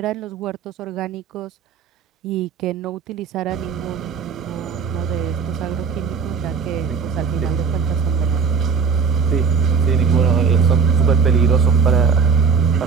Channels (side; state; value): left; quieter; 5.8 dB